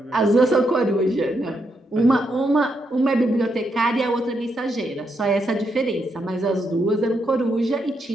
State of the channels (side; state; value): both; normal; correlation 0.80